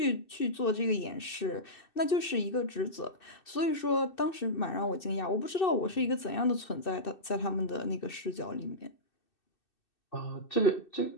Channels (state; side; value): late; right; 2.6 ms